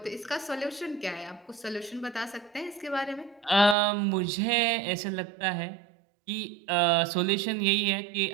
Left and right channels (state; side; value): drops out; left; at 3.8 s